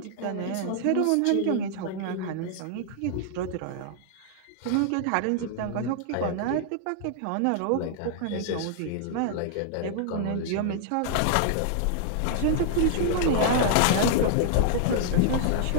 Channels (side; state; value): both; different; correlation -0.01